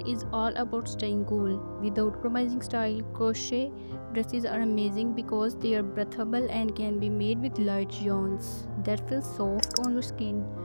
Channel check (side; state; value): both; inverted; correlation -1.00